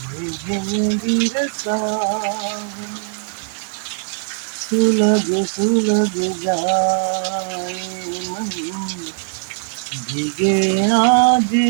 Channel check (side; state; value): left; silent; 66 dB below the other